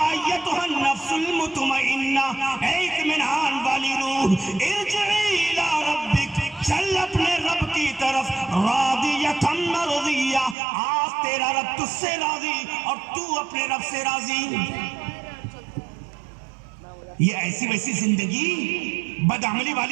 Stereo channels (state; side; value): drops out; left; at 10.6 s